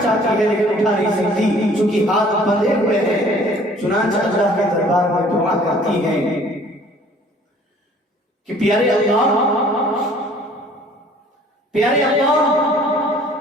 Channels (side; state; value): both; normal; correlation 0.54